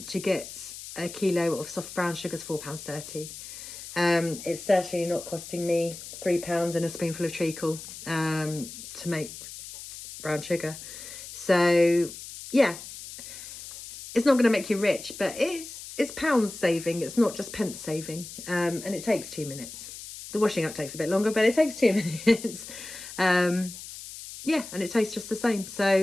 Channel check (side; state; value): left; noise; hiss, 12 dB below the sound